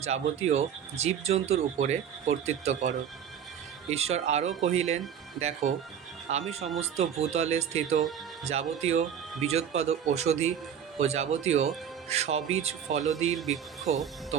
জীবজন্তুর উপরে কর্তৃত্ব করো। ঈশ্বর আরও কহিলেন, দেখো, আমি সমস্ত ভূতলে স্থিত যাবতীয় বীজোৎপাদ ঔষধি ও যাবতীয় সবীজ ফলদির বৃক্ষ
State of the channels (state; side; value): quieter; left; 8.5 dB